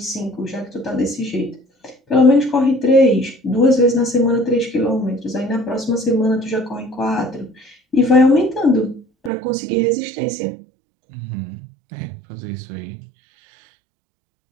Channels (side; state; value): left; drops out; at 9.3 s